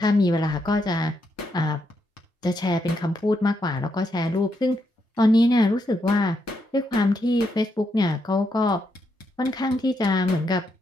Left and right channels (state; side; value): normal; both; correlation 0.80